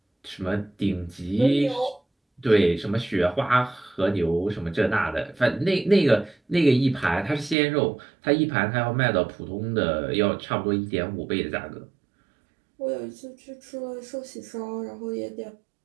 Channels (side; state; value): left; drops out; at 7.6 s